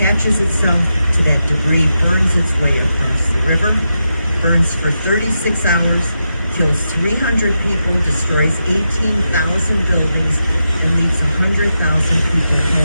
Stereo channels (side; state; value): both; inverted; correlation -0.87